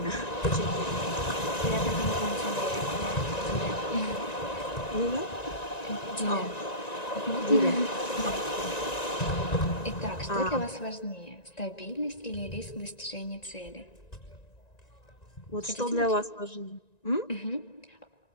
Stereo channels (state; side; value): late; right; 1.9 ms